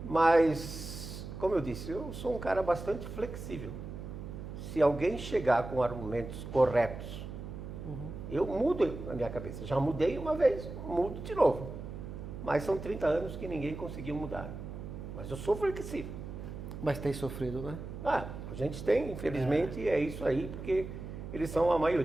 mas, como eu disse, eu sou um cara bastante flexível. Se alguém chegar com argumentos corretos, eu mudo a minha cabeça. Já mudei uma vez, mudo de novo. Mas são 30 anos que ninguém conseguiu mudar. Mas eu sou flexível. Mas tem sofrido, né? A gente tem, infelizmente, é isso aí, porque eles são a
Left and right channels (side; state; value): right; noise; hum, 9 dB below the sound